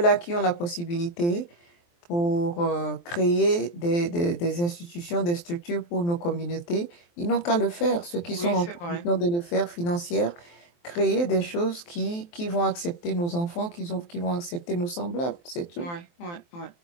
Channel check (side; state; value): right; late; 23 ms